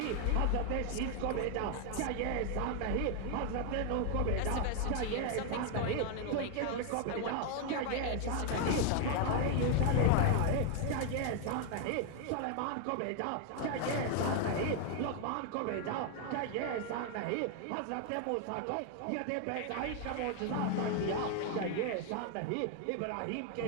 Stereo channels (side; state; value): both; different; correlation 0.01